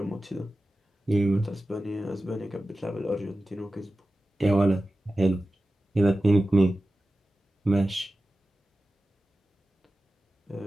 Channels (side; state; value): both; normal; correlation 0.95